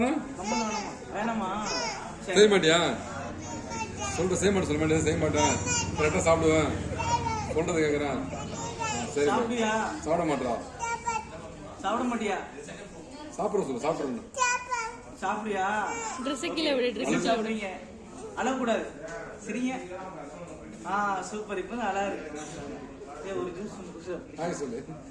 கம்மல் வேணாமா? வேணாமா? செய்ய மாட்டியா? செய்ய மாட்டேன், சொல்ல மாட்டேன், செய்ய மாட்டேன். கரெக்டா சாப்பிடுவேன். சொல்றது கேக்குறேன். சரி, சாப்பிடுயா? சாப்பிட மாட்டா. சாப்பிட மாட்டியா? சாப்பிட சொல்லு, சாப்பிடணும். சாப்பிடுயா? ட்ரெஸ் கீழே விடு, ட்ரெஸ் சாப்பிடுங்க. அழக்கூடாது. சரிங்க. சூப்பர். இப்போ அழகா இருக்கு. ஒரு ஜூஸ் சொல்லு.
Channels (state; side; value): identical; both; correlation 1.00